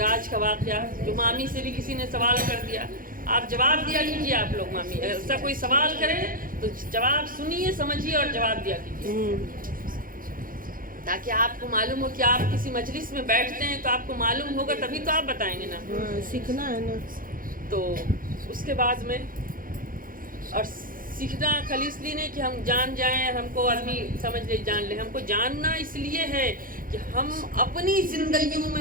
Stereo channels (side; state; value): left; late; 0.41 ms